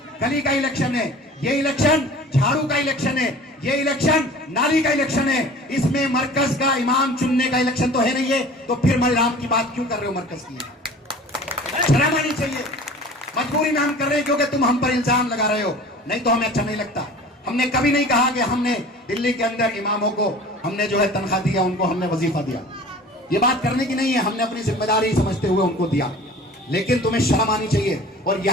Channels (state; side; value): normal; both; correlation 0.43